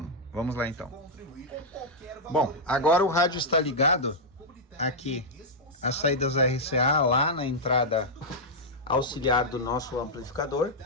Vamos lá então. Bom, agora o rádio está ligado aqui, as saídas RCA lá na entrada auxiliar do nosso amplificador.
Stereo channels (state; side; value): normal; both; correlation -0.06